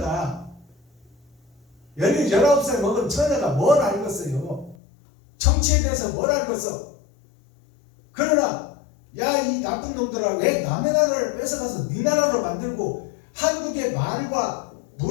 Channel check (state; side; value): drops out; right; at 4.8 s